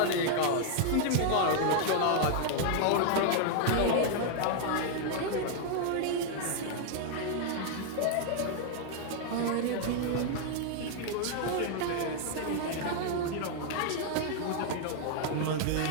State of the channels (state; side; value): different; both; correlation 0.00